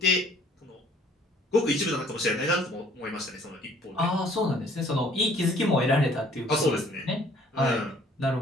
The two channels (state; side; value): normal; both; correlation 0.57